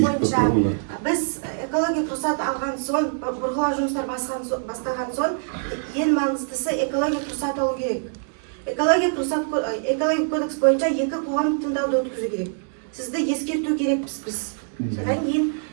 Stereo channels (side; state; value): left; silent; digital silence